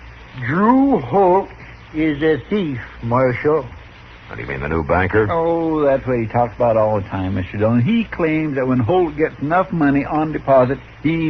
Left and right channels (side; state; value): both; identical; correlation 1.00